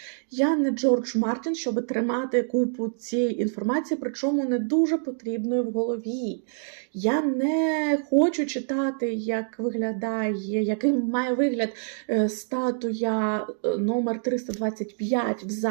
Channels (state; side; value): silent; left; digital silence